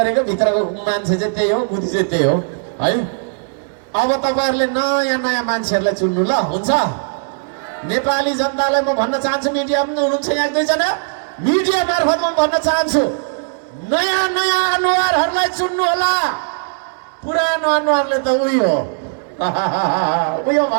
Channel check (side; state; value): left; silent; digital silence